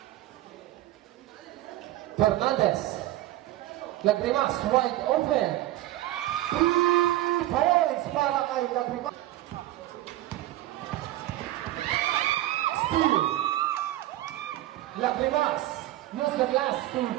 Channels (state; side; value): quieter; left; 15.4 dB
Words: Fernandez. Lagrimas, wide open. 3 points para kay Lagrimas. Steal. Lagrimas. Use the last 2